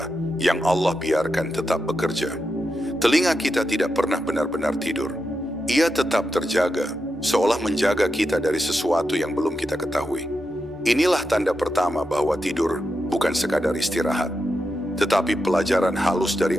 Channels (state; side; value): normal; both; correlation 0.87